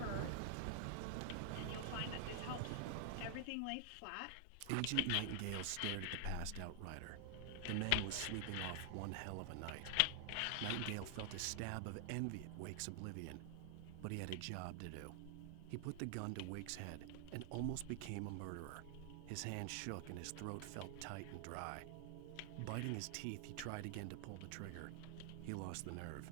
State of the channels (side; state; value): both; different; correlation 0.00